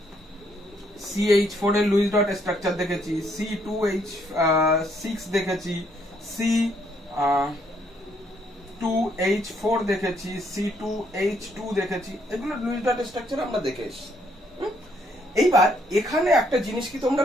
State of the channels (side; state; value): both; normal; correlation 0.70